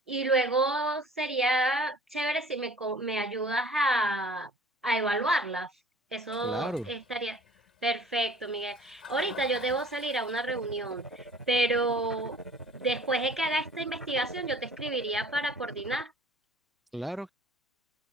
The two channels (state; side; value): normal; both; correlation 0.49